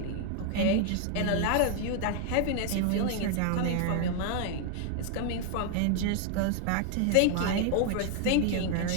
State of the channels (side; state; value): both; different; correlation 0.00